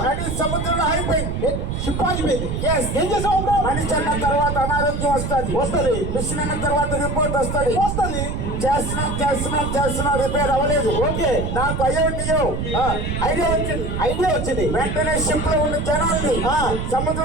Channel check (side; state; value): right; noise; rumble, 3 dB below the sound